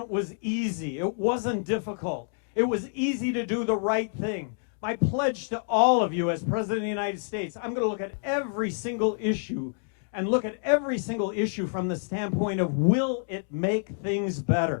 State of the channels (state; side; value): silent; right; digital silence